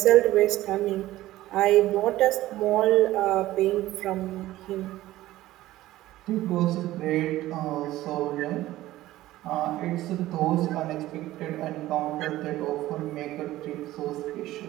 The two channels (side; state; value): left; quieter; 15.8 dB